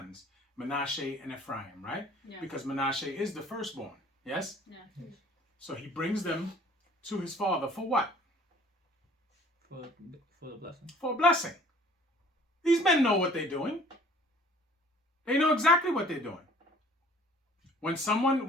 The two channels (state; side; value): normal; both; correlation 0.52